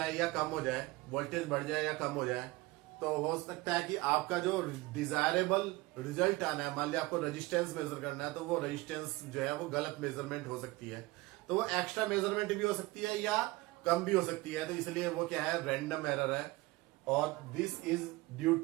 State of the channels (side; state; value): left; quieter; 20.8 dB